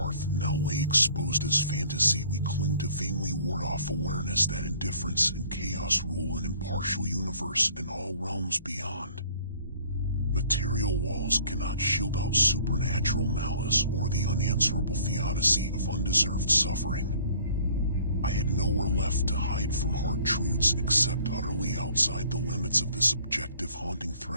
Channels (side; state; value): both; inverted; correlation -0.55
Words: now lay exposed as fantasy. We cling to vainly ward off awareness that indifference and chaos rule an impartial universe in all realms beyond. Material walls cannot shield out supernatural malice or the unanswerable theodicy of undeserved suffering. I had nowhere left to hide from hard truths except utterly outside the limits of this objective haunting